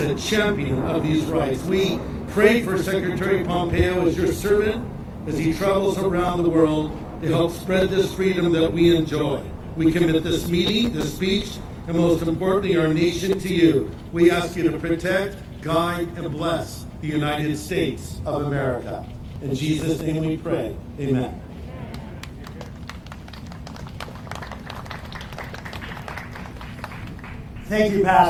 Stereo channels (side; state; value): both; identical; correlation 1.00